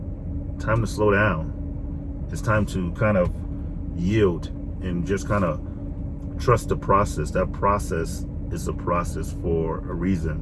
time to slow down. It's time to kind of yield and just kind of trust the process. That process is a process for a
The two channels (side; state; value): both; identical; correlation 1.00